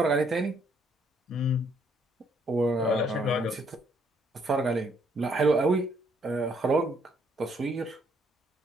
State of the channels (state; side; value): normal; both; correlation 0.69